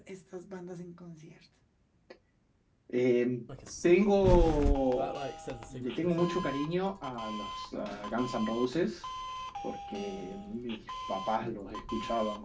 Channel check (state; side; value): identical; both; correlation 1.00